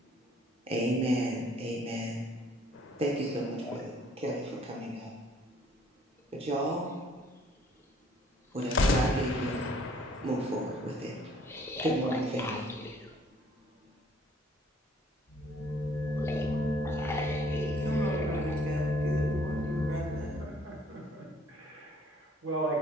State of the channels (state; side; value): normal; both; correlation 0.60